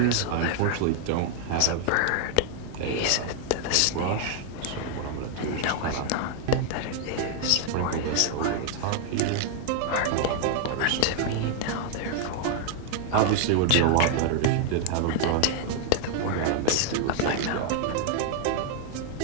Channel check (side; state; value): both; different; correlation 0.00